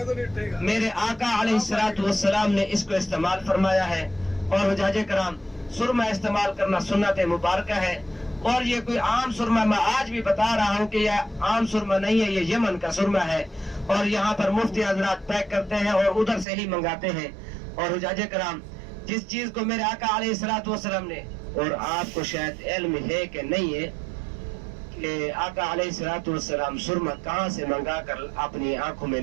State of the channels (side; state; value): left; drops out; at 16.4 s